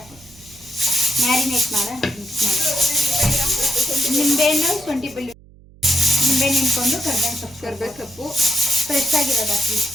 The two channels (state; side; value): noise; right; hum, 25 dB below the sound